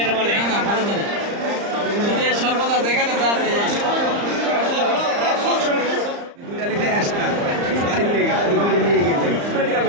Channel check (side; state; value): left; late; 34 ms